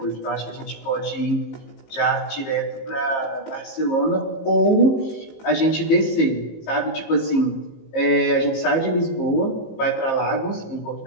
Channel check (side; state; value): right; late; 18 ms